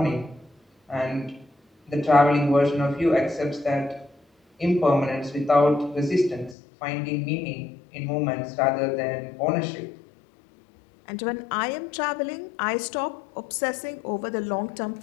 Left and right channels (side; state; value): right; drops out; at 6.6 s